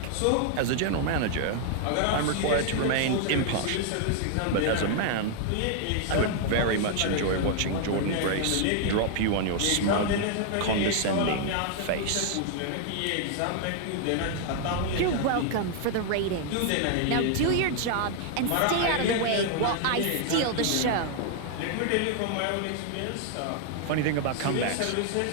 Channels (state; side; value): different; both; correlation 0.00